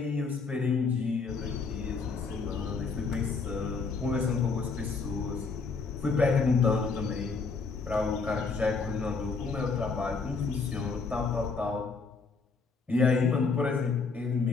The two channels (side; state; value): right; quieter; 4.6 dB